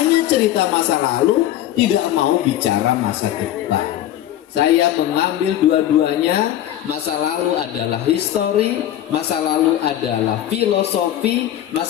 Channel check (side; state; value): right; quieter; 12.3 dB